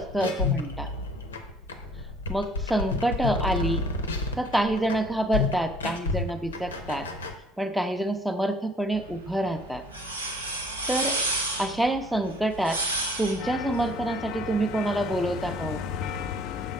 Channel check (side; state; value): both; normal; correlation 0.57